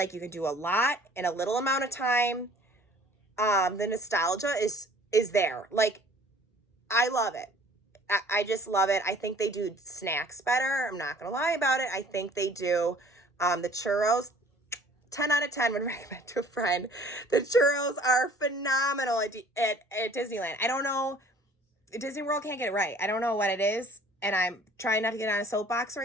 you can do a lot in a little amount of time. The nostalgia is there. Like, I love it. I just love it. I think they do snacks better. I'm not going to lie about it. I think they do. The churros, 10 out of 10 would recommend to a friend. The churros are phenomenal at Disneyland. I don't know. Disney World can't get it right. I don't know what it is. And I'm trying not to get on a soapbox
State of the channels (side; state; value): both; normal; correlation 0.52